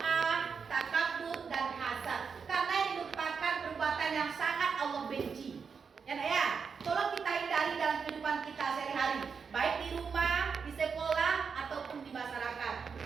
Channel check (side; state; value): left; quieter; 5.8 dB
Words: takabur, dan hasad. Karena ini merupakan perbuatan yang sangat Allah benci. Ya, tolong kita hindari dalam kehidupan kita sehari-hari, baik di rumah, di sekolah, ataupun di masyarakat.